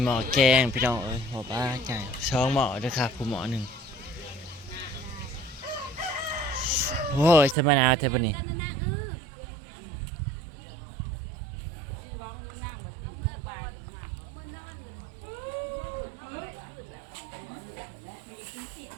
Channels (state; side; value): drops out; left; at 7.6 s